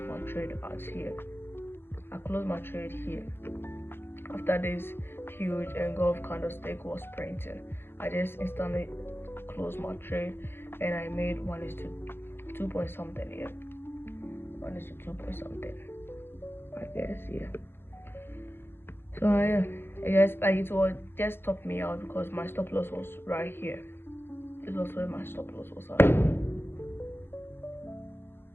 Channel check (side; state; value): right; late; 0.11 ms